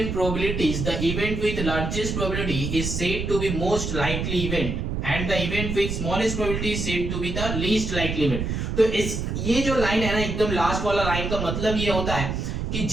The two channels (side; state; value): right; noise; rumble, 3 dB below the sound